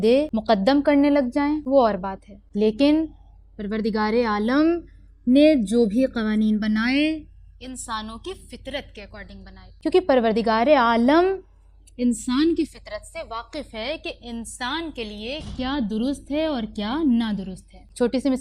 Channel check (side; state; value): both; identical; correlation 1.00